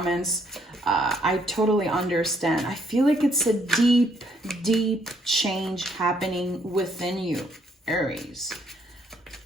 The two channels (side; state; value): both; normal; correlation 0.69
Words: I totally understand. I feel like it's a deep, deep change happening within you, Aries.